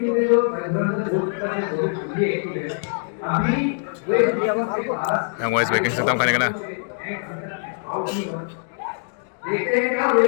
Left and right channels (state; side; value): silent; right; digital silence